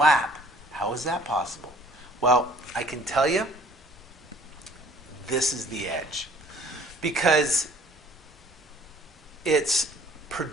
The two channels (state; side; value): normal; both; correlation 0.54